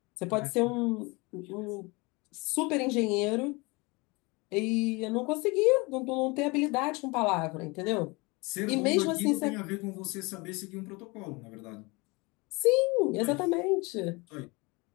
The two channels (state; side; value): quieter; right; 26.1 dB